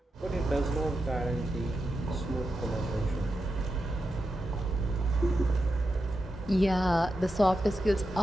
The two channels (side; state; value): both; normal; correlation 0.88